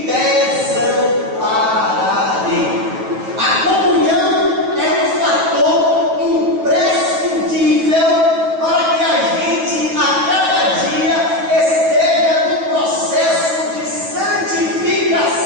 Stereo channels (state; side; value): late; left; 8.9 ms